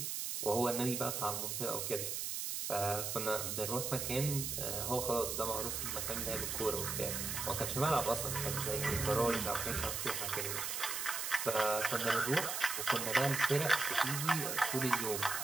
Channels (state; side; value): noise; right; hiss, 2 dB below the sound